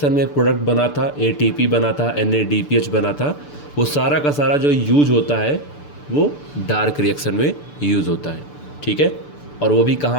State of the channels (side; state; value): right; late; 6.8 ms